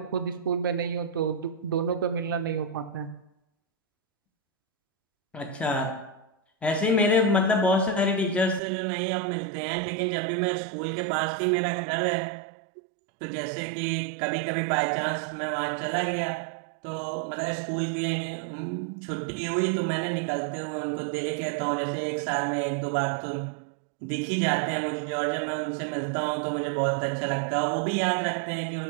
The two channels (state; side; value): drops out; left; at 8.6 s